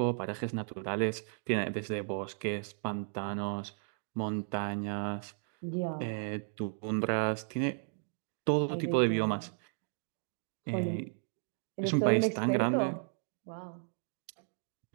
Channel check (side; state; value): left; silent; digital silence